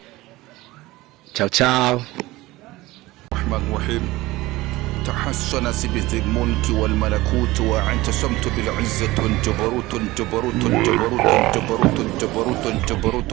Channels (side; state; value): left; quieter; 19.1 dB